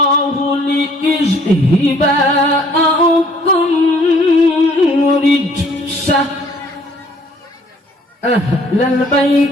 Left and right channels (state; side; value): normal; both; correlation 0.59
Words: ليذهب عنكم رجس أهل